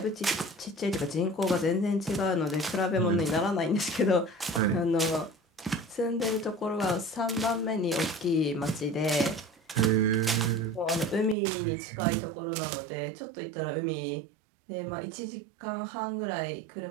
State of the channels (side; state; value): left; drops out; at 11.4 s